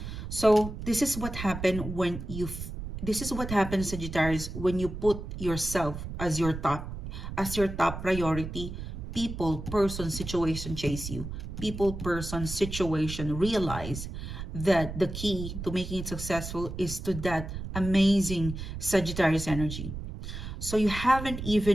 so this is what happened when you this is what happens, Sagittarius, when you put yourself as your top priority. People, person, situation chase you. People, person, situation realize that the key to making it successful is to that amazing Sagittarius energy. So you haven't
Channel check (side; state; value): right; noise; rumble, 8 dB below the sound